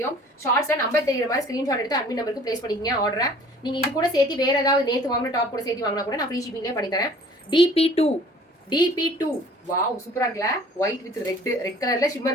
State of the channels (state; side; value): normal; both; correlation 0.51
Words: ஷார்ட்ஸ்ல நம்பர் தெரியுற மாதிரி ஸ்கிரீன்ஷாட் எடுத்து அட்மின் நம்பருக்கு பிளேஸ் பண்ணிக்கங்க ஆர்டரை. நீங்க இது கூட சேர்த்து வேற ஏதாவது நேத்து வாங்கின டாப் கூட சேர்த்து வாங்கினா கூட நான் ஃப்ரீ ஷிப்பிங்லேயே பண்ணி தரேன். DP2 வாவ் சூப்பரா இருக்குல்ல. ஒயிட் வித் ரெட் கலர்ல